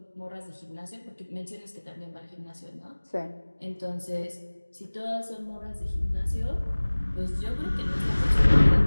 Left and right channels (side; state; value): both; inverted; correlation -1.00